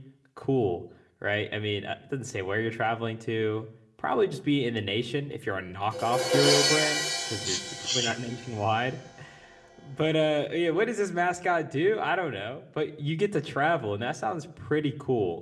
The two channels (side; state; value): both; identical; correlation 1.00